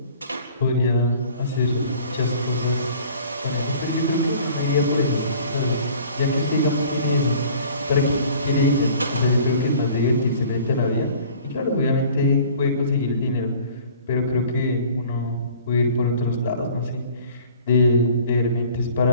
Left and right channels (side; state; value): both; inverted; correlation -0.50